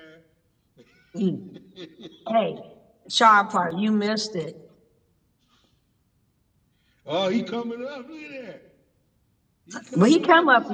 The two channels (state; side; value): identical; both; correlation 1.00